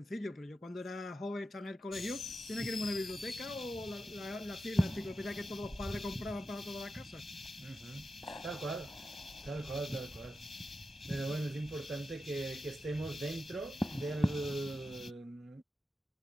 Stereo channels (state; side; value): normal; both; correlation 0.90